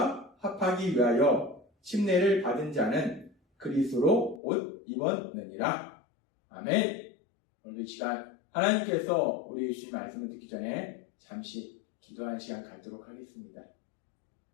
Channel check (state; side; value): drops out; right; at 4.4 s